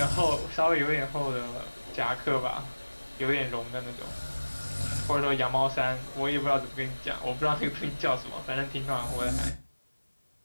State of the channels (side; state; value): both; inverted; correlation -1.00